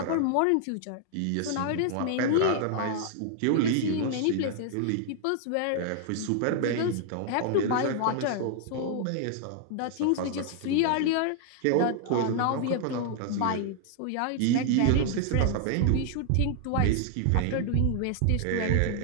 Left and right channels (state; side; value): different; both; correlation 0.00